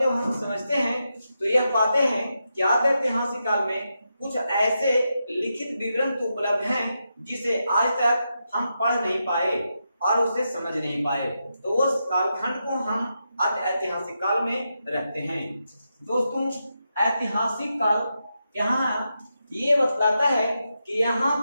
हम समझते हैं तो यह पाते हैं कि आद्य ऐतिहासिक काल में कुछ ऐसे लिखित विवरण तो उपलब्ध हैं जिसे आज तक हम पढ़ नहीं पाए और उसे समझ नहीं पाए। तो उस कालखंड को हम आद्य ऐतिहासिक काल में रखते हैं। दोस्तों, ऐतिहासिक काल यहाँ ये बतलाता है कि यहाँ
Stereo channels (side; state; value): both; inverted; correlation -0.86